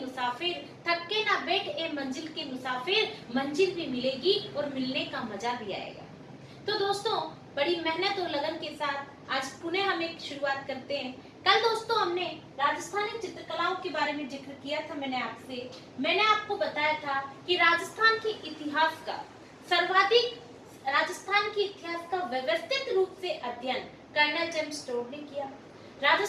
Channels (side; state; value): both; identical; correlation 1.00